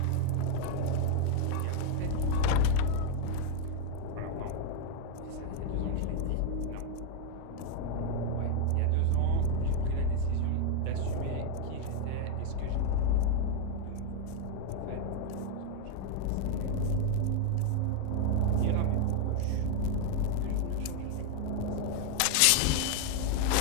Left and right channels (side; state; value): both; different; correlation 0.00